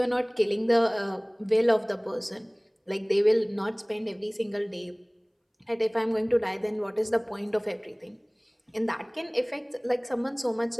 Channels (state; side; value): identical; both; correlation 1.00